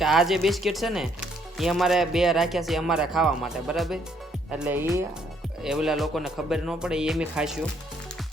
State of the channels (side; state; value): both; normal; correlation 0.68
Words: કે આ જે બિસ્કિટ છે ને એ અમારે બે રાખ્યા છે અમારે ખાવા માટે, બરાબર. એટલે એ ઓલા લોકોને ખબર ન પડે એ એમ ખાઈશું.